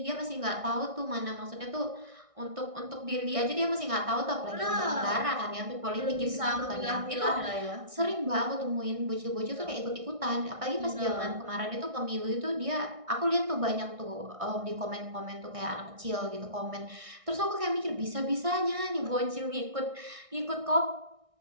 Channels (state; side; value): late; left; 1.6 ms